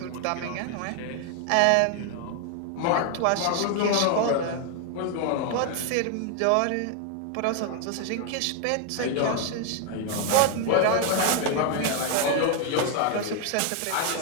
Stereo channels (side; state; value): both; different; correlation 0.00